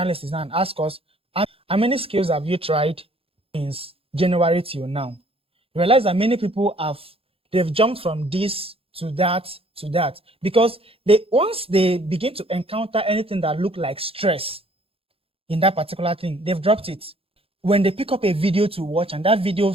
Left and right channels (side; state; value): left; late; 0.27 ms